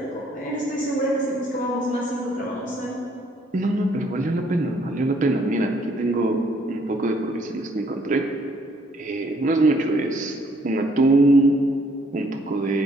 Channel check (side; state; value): both; normal; correlation 0.65